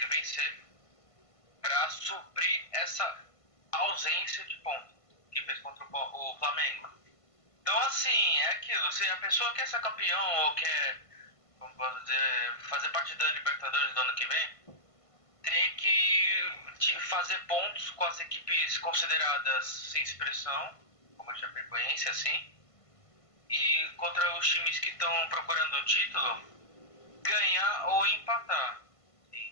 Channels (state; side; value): late; right; 1.5 ms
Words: vencer para suprir essa ausência de ponto que fez contra o Flamengo. Então, assim, é aquilo. Se a pessoa quer ser campeão ou quer, como posso dizer, fazer parte da Libertadores do ano que vem, tem que fazer pontos com as equipes consideradas sem expressão, como a Chapecoense, assim, e contra os times que estão procurando o título, ganhar ou empatar,